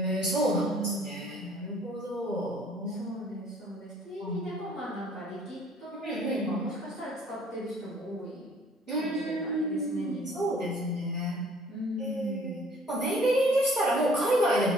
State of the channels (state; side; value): normal; both; correlation 0.57